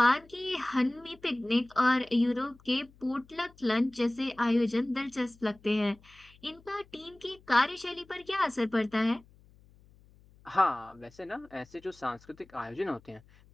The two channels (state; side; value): noise; left; hum, 27 dB below the sound